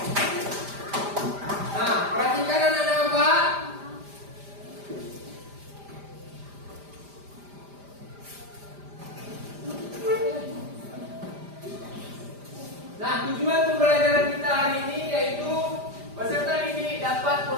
Nah, perhatikan anak-anak Bapak. Nah, tujuan pembelajaran kita hari ini yaitu peserta didik dapat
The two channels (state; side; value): late; left; 5.0 ms